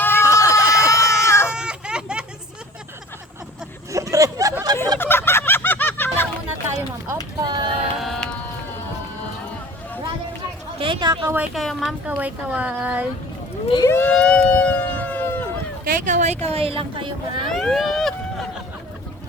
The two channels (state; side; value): normal; both; correlation 0.44